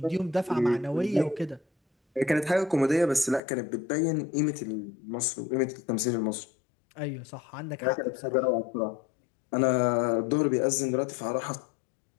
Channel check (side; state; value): right; drops out; at 3.4 s